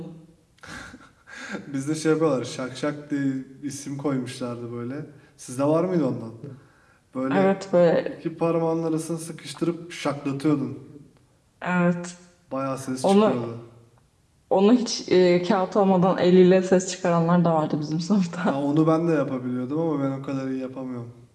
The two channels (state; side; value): identical; both; correlation 1.00